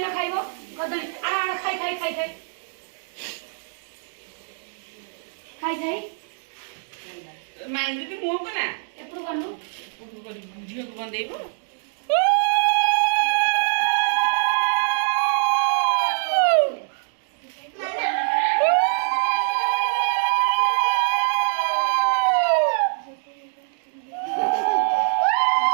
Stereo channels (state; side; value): silent; left; digital silence